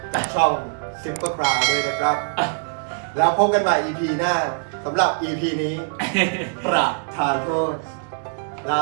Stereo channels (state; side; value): silent; left; digital silence